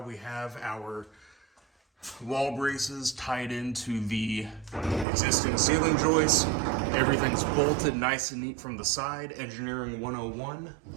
we have our wall braces tied into the existing ceiling joists. Everything's bolted nice and neat from the side, engineering 101.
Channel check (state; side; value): drops out; left; at 5.1 s